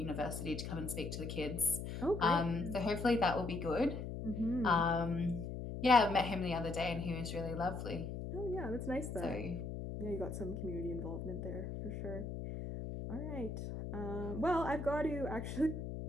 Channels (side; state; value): left; noise; hum, 6 dB below the sound